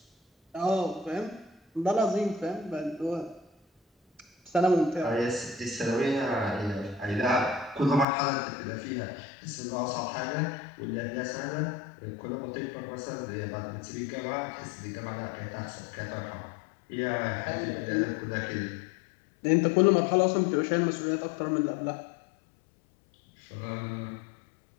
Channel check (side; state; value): right; drops out; at 8.1 s